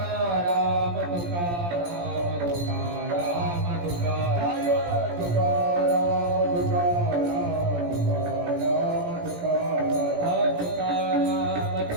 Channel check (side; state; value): left; late; 17 ms